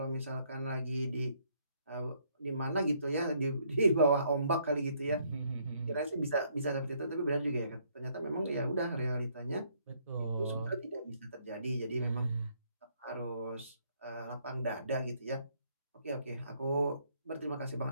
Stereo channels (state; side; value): inverted; both; correlation -0.69